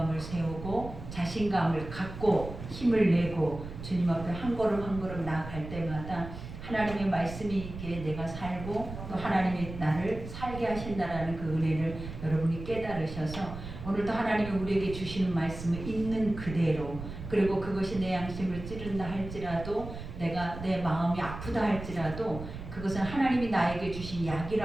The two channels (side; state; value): right; noise; rumble, 10 dB below the sound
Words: 세우고 자신감을 갖고 힘을 내고 주님 앞에 한 걸음 한 걸음 나아갈 때마다 하나님의 말씀이 있기에 내가 살고 또 하나님이 나를 살게 하신다라는 그 은혜를 여러분이 깨달으셔서 오늘도 하나님이 우리에게 주시는 말씀을 있는 그대로, 그리고 그것이 내 양심을 찌른다 할지라도, 내가 내 마음이 아프다 할지라도 그것은 하나님이 나에게 주신